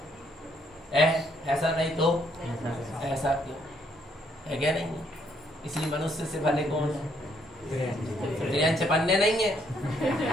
ऐसा नहीं तो ऐसा क्यों है, क्या नहीं। इसलिए मनुष्य से भले कौन है, त्रियंच पन्ने नहीं है।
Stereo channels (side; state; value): both; normal; correlation 0.70